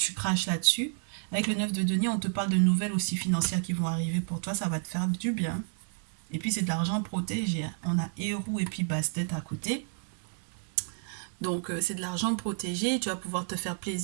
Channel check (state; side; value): silent; left; 57 dB below the other